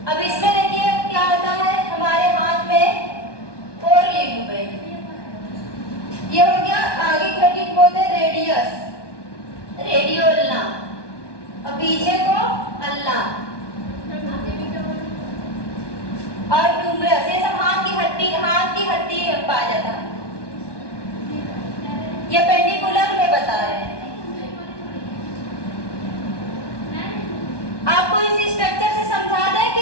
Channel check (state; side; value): late; right; 1.2 ms